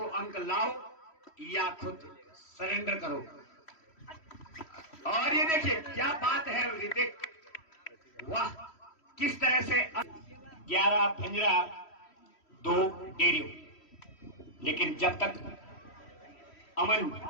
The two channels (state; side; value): late; right; 3.1 ms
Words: अंक लाओ या खुद सरेंडर करो। और ये देखिए क्या बात है ऋतिक, वाह किस तरह से 11 भंजरा 2 डेरियो। लेकिन जब तक अमन